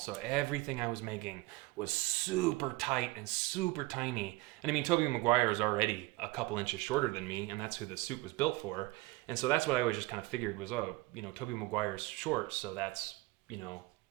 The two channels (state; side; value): quieter; left; 21.0 dB